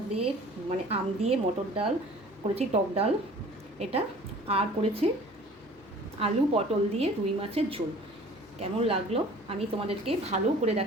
দিয়ে, আম দিয়ে মটর ডাল করেছি, টক ডাল এটা। আর করেছি আলু পটল দিয়ে রুই মাছের ঝোল। কেমন লাগলো আমি তোমাদেরকে ভালো করে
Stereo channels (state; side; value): normal; both; correlation 0.48